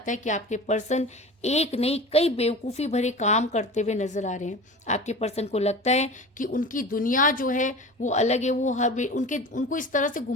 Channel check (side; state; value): both; normal; correlation 0.35